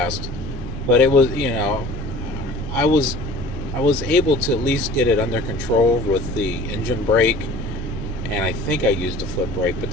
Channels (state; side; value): noise; left; rumble, 12 dB below the sound